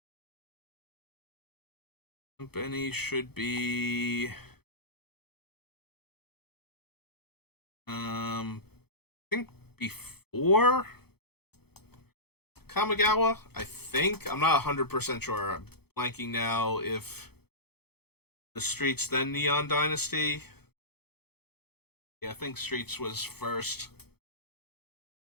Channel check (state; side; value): late; right; 0.96 ms